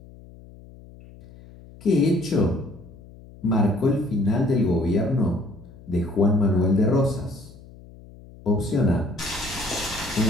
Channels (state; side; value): noise; left; hum, 20 dB below the sound